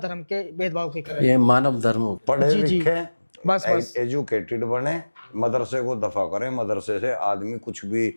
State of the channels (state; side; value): inverted; both; correlation -1.00